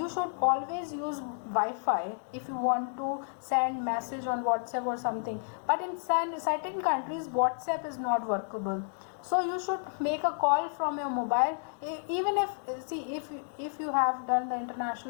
should always use Wi-Fi if you want to send message on WhatsApp or something. But in certain countries, WhatsApp is not workable. So you should make a call from your mobile. Even if you have done the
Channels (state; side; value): silent; right; digital silence